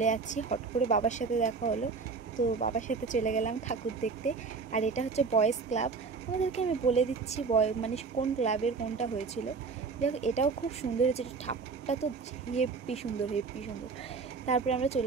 যাচ্ছি, হট করে বাবার সাথে দেখা হলো, তো বাবার সাথে চলে গেলাম ঠাকুর দেখতে। আর এটা হচ্ছে বয়েজ ক্লাব, আমাদেরকে আমি বলে দিচ্ছি মানে কোন ক্লাবের কোনটা হয়েছিল। যাই হোক, এটাও খুব সুন্দর হয়েছে, ঠাকুরটা তো হেব্বি সুন্দর, হেব্বি সুন্দর। তারপরে আমরা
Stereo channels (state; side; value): quieter; left; 4.8 dB